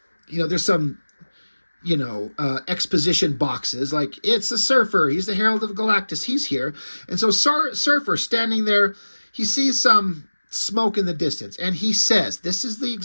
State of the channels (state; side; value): inverted; both; correlation -1.00